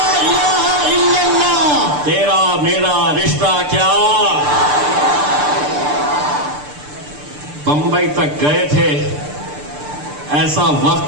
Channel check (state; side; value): late; left; 6.8 ms